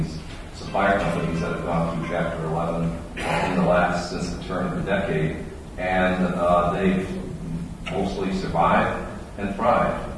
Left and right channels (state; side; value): identical; both; correlation 1.00